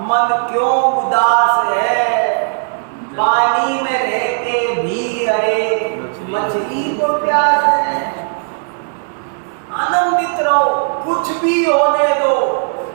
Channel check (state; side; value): silent; left; 62 dB below the other